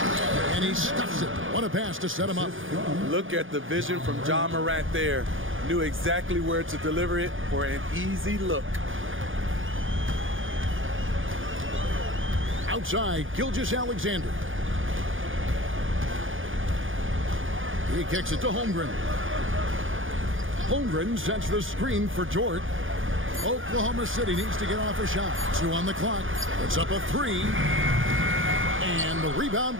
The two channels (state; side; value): late; left; 0.58 ms